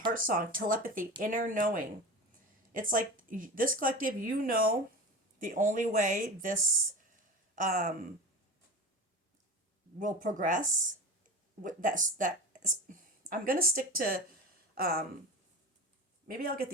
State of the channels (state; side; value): normal; both; correlation 0.30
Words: song, telepathy, inner knowing. It's like this collective, you know, the only way this will progress. I'm gonna stick to. Maybe I'll get